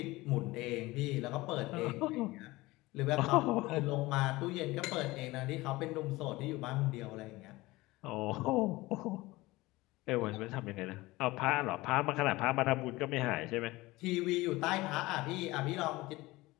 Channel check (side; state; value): right; quieter; 20.1 dB